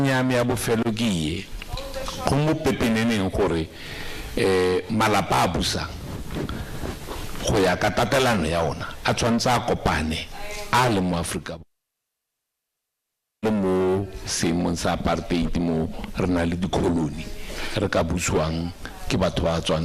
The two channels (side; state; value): both; identical; correlation 1.00